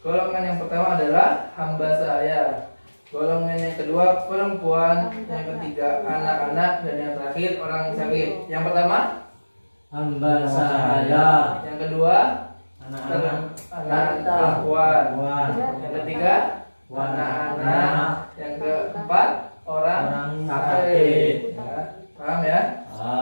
Golongan yang pertama adalah hamba sahaya, golongan yang kedua perempuan, yang ketiga anak-anak, dan yang terakhir orang sakit. Yang pertama hamba sahaya, yang kedua anak-anak, perempuan, yang ketiga anak-anak, yang keempat orang sakit ya. Paham ya?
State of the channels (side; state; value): both; inverted; correlation -1.00